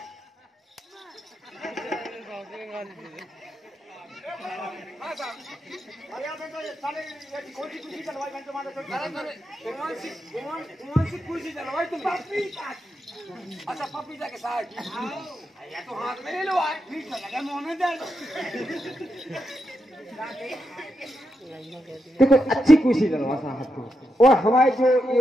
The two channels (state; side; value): normal; both; correlation 0.85